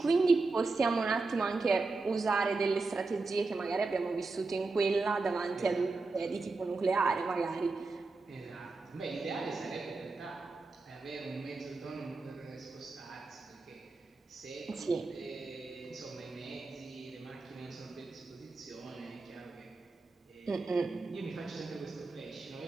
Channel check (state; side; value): quieter; left; 3.8 dB